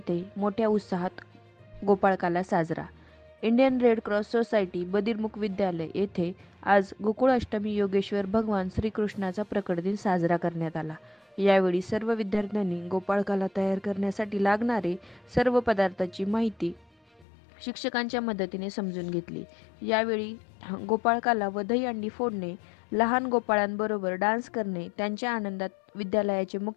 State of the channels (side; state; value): right; drops out; at 17.2 s